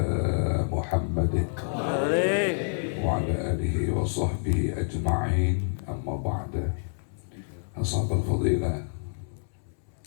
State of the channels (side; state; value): right; silent; 60 dB below the other